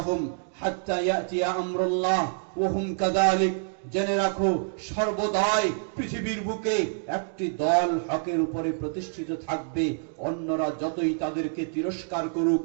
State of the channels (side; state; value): left; silent; digital silence